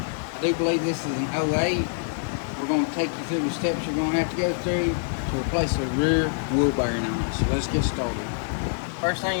I do believe this is an 08. We're going to take you through the steps you're going to have to go through to replace the rear wheel bearing on it. So let's get started. First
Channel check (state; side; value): silent; right; digital silence